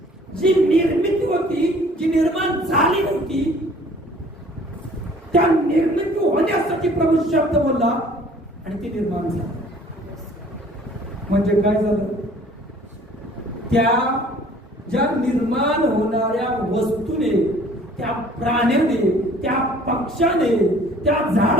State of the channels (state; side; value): normal; both; correlation 0.53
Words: जी निर्मिती होती, जी निर्माण झाली नव्हती, त्या निर्मिती होण्यासाठी प्रभू शब्द बोलला आणि ती निर्माण झाली. म्हणजे काय झालं? त्या ज्या निर्माण होणाऱ्या वस्तूने, त्या प्राण्याने, त्या पक्षाने, त्या